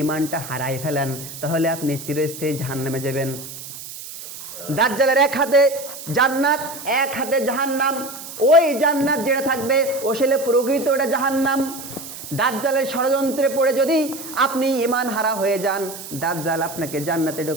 ঈমানটা হারাই ফেলেন, তাহলে আপনি চিরস্থায়ী জাহান্নামে যাবেন। দাজ্জালের এক হাতে জান্নাত, এক হাতে জাহান্নাম। ওই জান্নাত যেটা থাকবে আসলে প্রকৃত ওটা জাহান্নাম। দাজ্জালের ষড়যন্ত্রে পড়ে যদি আপনি ঈমান হারা হয়ে যান, দাজ্জাল আপনাকে জান্নাতে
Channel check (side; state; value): right; noise; hiss, 12 dB below the sound